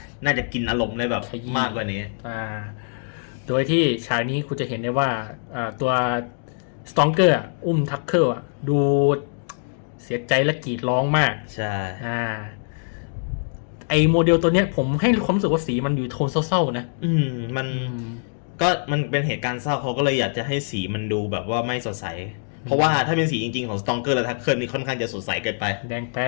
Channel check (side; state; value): right; silent; digital silence